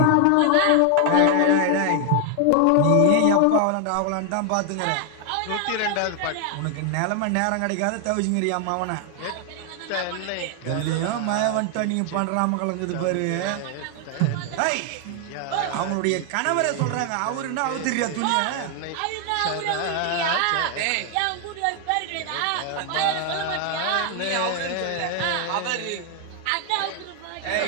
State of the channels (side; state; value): both; different; correlation 0.00